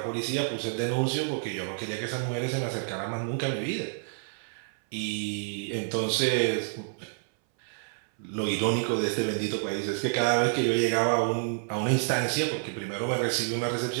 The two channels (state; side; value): silent; left; 59 dB below the other